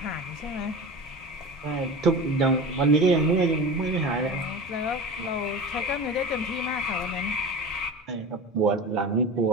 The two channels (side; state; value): both; normal; correlation 0.31